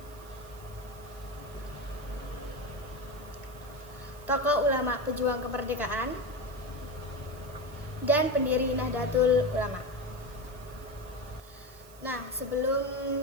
Tokoh ulama pejuang kemerdekaan dan pendiri Nahdlatul Ulama. Nah,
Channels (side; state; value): right; noise; hiss, 22 dB below the sound